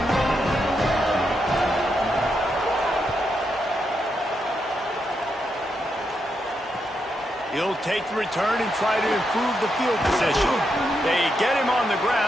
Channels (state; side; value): normal; both; correlation 0.82